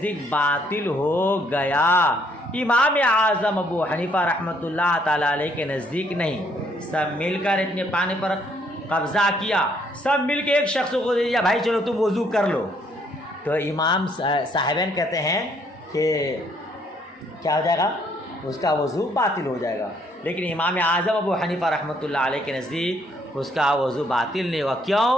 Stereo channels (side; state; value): both; normal; correlation 0.68